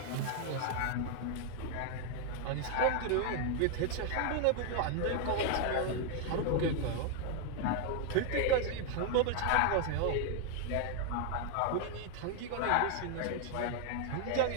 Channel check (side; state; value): both; different; correlation 0.00